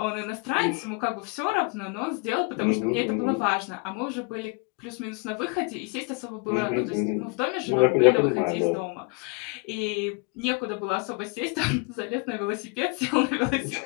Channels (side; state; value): right; quieter; 31.4 dB